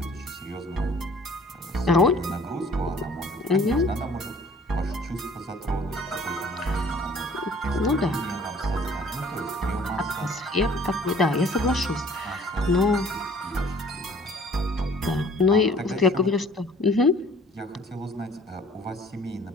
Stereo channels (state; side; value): normal; both; correlation 0.53